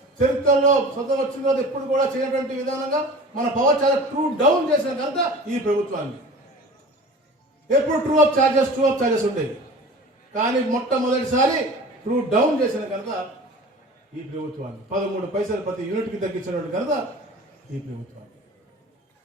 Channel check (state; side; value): normal; both; correlation 0.40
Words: చరిత్రలో స్వతం వచ్చిన తర్వాత ఎప్పుడు కూడా చేయనటువంటి విధానంగా మన పవర్ చాలా ట్రూ డౌన్ చేసిన కనుక ఈ ప్రభుత్వాన్ని. ఎప్పుడు ట్రూ అప్ ఛార్జెస్ ఉండేవి, కానీ మొట్టమొదటిసారి ట్రూ డౌన్ చేసిన కనుక ఈ ప్రభుత్వాన్ని 13 పైసలు ప్రతి యూనిట్కి తగ్గించినటువంటి కనుక ఈ ప్రభుత్వాన్ని.